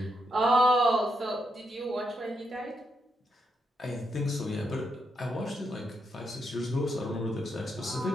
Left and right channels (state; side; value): normal; both; correlation 0.80